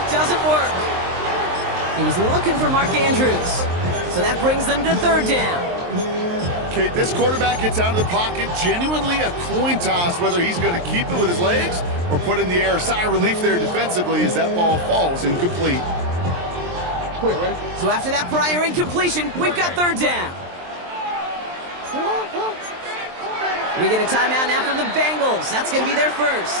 doesn't work. He was looking for Mark Andrews. So that brings them to 3rd down. Okay, this quarterback gets out of the pocket, genuinely a coin toss, whether he's going to keep it with his legs or put in the air. Sigh of relief there defensively as that ball falls incomplete. So after that prior incompletion, we've got 3rd down. We get a timeout now from the Bengals. That's going to be their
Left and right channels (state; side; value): late; left; 23 ms